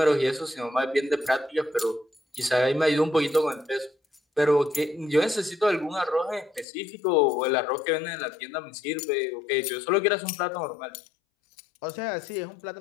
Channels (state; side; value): drops out; right; at 6.7 s